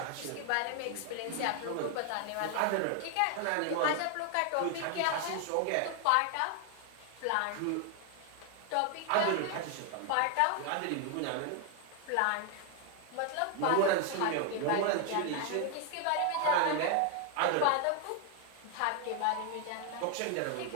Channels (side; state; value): both; different; correlation 0.00